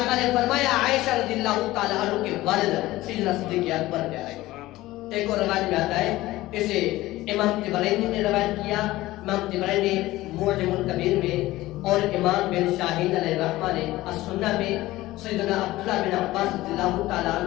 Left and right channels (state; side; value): quieter; right; 17.4 dB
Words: نے فرمایا عائشہ رضی اللہ تعالیٰ عنہ کے والد سیدنا صدیق اکبر پیارے ہیں۔ ایک اور روایت میں آتا ہے، اسے امام طبرانی نے روایت کیا، امام طبرانی معجم الکبیر میں، اور امام بن شاہین علیہ الرحمہ نے السنہ میں سیدنا عبداللہ بن عباس رضی اللہ تعالیٰ